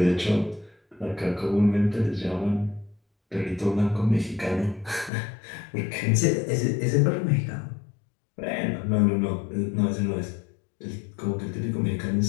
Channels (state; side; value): drops out; right; at 5.1 s